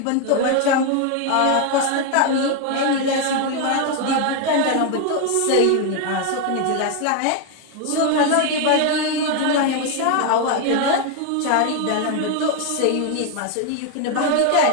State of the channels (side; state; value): both; different; correlation 0.01